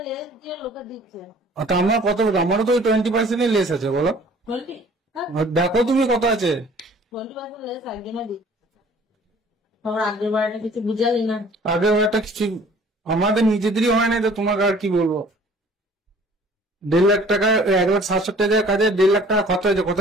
যে লোকে দিচ্ছে তা আমার কত, আমারও তো 20% লেস আছে বলো। 20, দেখো তুমি কত আছে। 20% লেস একজনে দিচ্ছে। তোর আগের বারটা কিছু বুঝালি না। আগের একটা কিছু আমাদের নিজেদেরই হয় না, তো তোমাকে আর কি বলবো। 1.5 লাখ টাকা 1,60,000 টাকা কাজে 1.5 লাখ টাকা খরচ হয়েছে,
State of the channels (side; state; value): both; normal; correlation 0.52